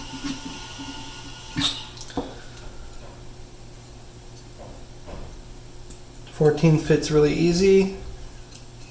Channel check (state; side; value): identical; both; correlation 1.00